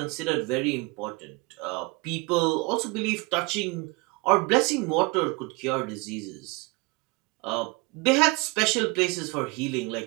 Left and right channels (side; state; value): left; quieter; 26.6 dB